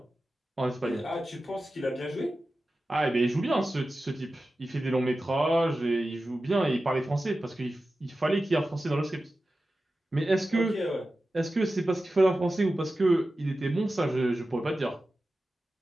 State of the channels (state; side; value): normal; both; correlation 0.94